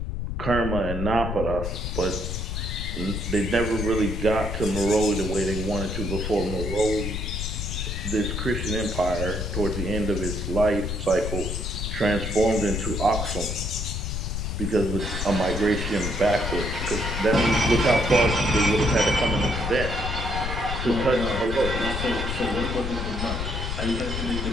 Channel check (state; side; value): noise; left; rumble, 3 dB below the sound